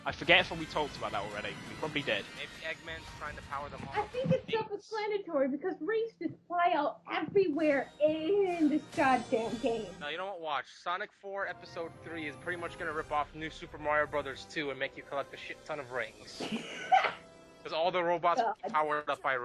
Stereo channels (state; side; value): identical; both; correlation 1.00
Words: I forget if we talked about that already. We probably did. Maybe Eggman's trying to power them all. I think it's self-explanatory because rings just fly out everywhere in this goddamn game. No, you know what? Watch. Sonic 4 Episode 3 is pretty much gonna rip off New Super Mario Bros. 2 and make you collect a shit ton of rings. Because all the robots will be powered up by